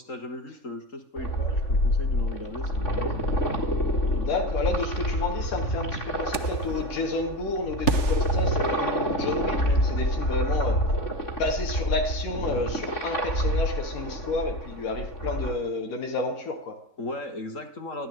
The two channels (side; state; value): right; late; 3.4 ms